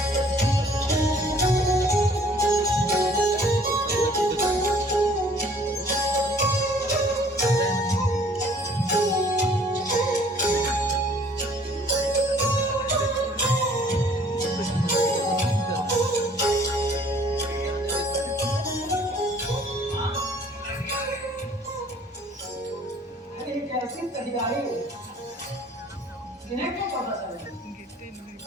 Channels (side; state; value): both; normal; correlation 0.55